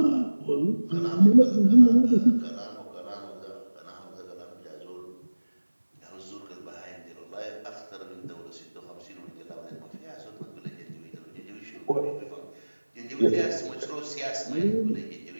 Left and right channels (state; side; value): inverted; both; correlation -1.00